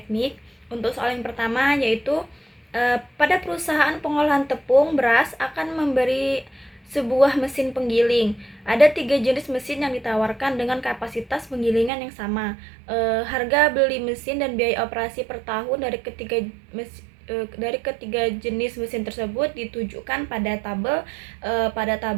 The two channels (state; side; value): drops out; left; at 11.9 s